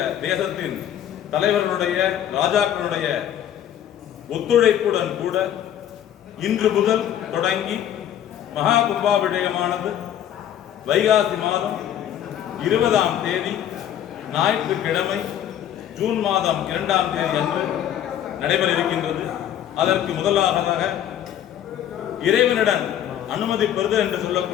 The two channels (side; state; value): right; quieter; 10.7 dB